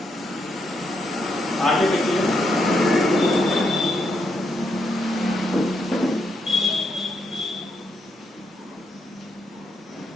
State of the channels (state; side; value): normal; both; correlation 0.79